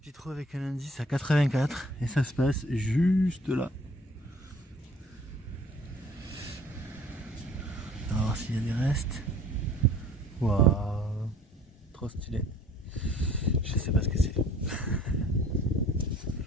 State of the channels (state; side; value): normal; both; correlation 0.53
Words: trou avec un indice à 84 et ça se passe juste là. On va voir s'il y a des restes. Waouh, trop stylé. Je sais pas ce que c'est.